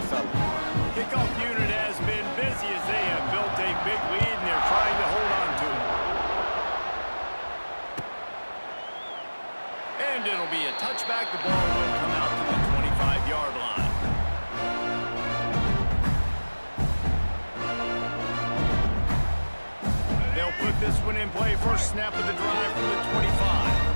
fella. Kickoff unit has been busy as they have built a big lead and they're trying to hold on to it. And it'll be a touchback. The ball will come out to the 25-yard line. They'll put this one in play. First snap of the drive from the 25.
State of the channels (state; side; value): inverted; both; correlation -1.00